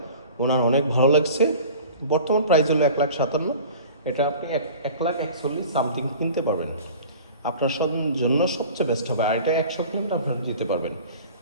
ওনার অনেক ভালো লাগছে। বর্তমান প্রাইস হলো 1,57,000, এটা আপনি 1,41,000 সামথিং কিনতে পারবেন। আপনার জন্য সবচেয়ে বেস্ট হবে। আর এটা 100 কিলোমিটার আপনারা যেতে পারবেন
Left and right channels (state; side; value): inverted; both; correlation -0.42